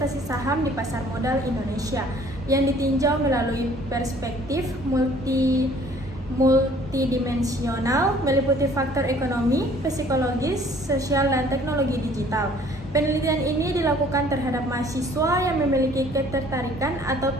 saham di pasar modal Indonesia yang ditinjau melalui perspektif multidimensional meliputi faktor ekonomi, psikologis, sosial, dan teknologi digital. Penelitian ini dilakukan terhadap mahasiswa yang memiliki ketertarikan atau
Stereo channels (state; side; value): normal; both; correlation 0.55